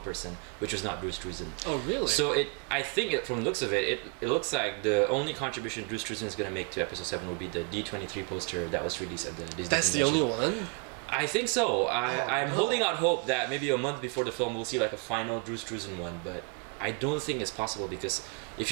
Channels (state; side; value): quieter; left; 33.4 dB